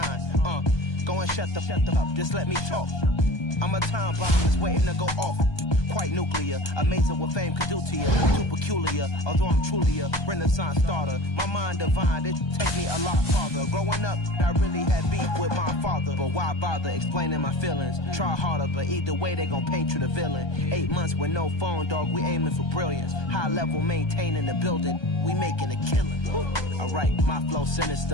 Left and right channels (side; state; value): right; late; 1.2 ms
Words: Go and shut the up, just let me talk. I'm a time bomb that's waiting to go off. Quite nuclear, amazing what fame could do to you. Too peculiar, although I'm truly a renaissance starter. My mind divine, it take me a lot farther. Growing up, I really had beef with my father. But why bother explaining my feelings? Try harder, but either way they gon' paint you the villain. 8 months with no phone, dog, we aiming for brilliance. High level maintaining the building, we making a killing. Alright, my flow